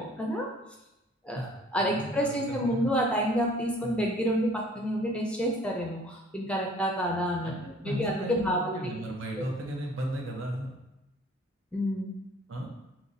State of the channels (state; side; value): normal; both; correlation 0.54